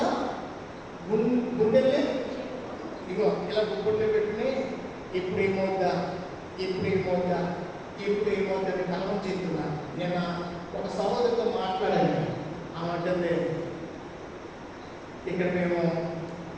సార్? గుండెల్ని ఇగో ఇలా గుండె పెట్టుకుని ఇప్పుడు ఏమవుద్దా అని కలవం చెప్తున్నా. నేను ఒక సహోదరితో మాట్లాడాను. ఆమె ఇక్కడ మేము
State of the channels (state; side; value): identical; both; correlation 1.00